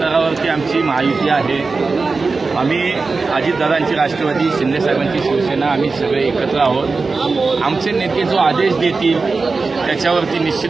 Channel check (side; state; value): left; quieter; 4.1 dB